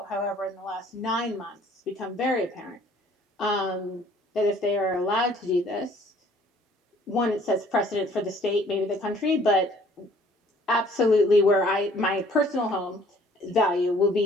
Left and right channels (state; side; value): normal; both; correlation 0.57